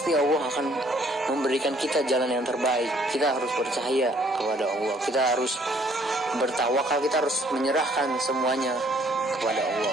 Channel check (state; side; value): normal; both; correlation 0.62